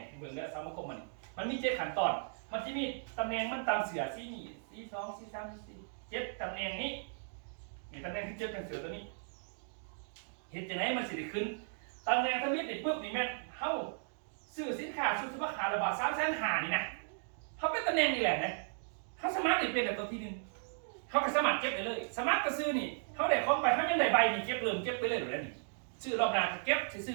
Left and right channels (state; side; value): silent; left; digital silence